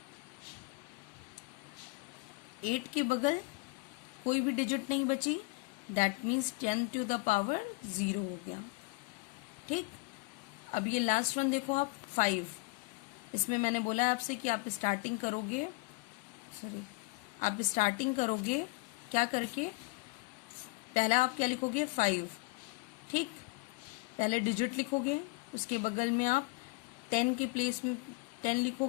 8 के बगल कोई भी डिजिट नहीं बची, that means 10 to the power 0 हो गया। ठीक, अब ये लास्ट वन देखो आप, 5। इसमें मैंने बोला आपसे कि आप स्टार्टिंग करोगे, क्या करके, पहला आप क्या लिखोगे, 5। ठीक, पहले डिजिट लिखोगे, उसके बगल में आप 10 के प्लेस में 10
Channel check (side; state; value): right; quieter; 25.8 dB